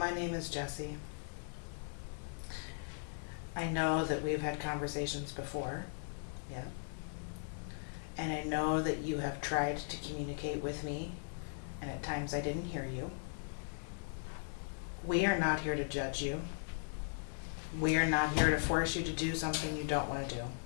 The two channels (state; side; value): silent; right; digital silence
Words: name is Jessie. I know that we've had conversations before, yeah. And I know that you have tried to communicate with me, and at times I didn't hear you. We are not here to judge you. We are not here to force you to do something you don't want to do.